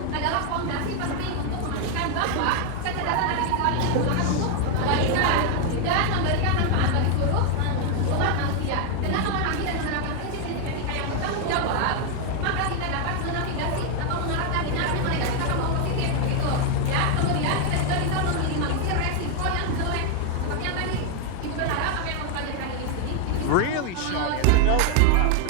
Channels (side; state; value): both; different; correlation 0.01